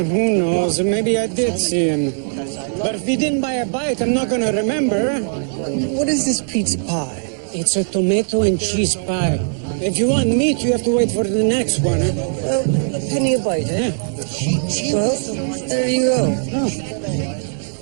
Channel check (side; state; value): left; silent; digital silence